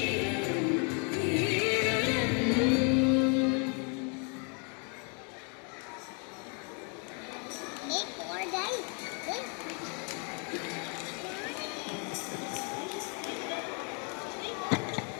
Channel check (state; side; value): quieter; right; 37.5 dB